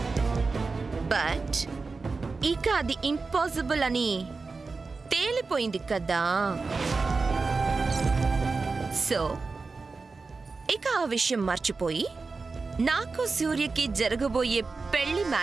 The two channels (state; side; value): quieter; left; 4.2 dB